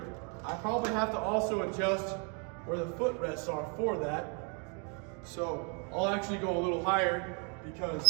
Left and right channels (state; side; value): quieter; left; 36.7 dB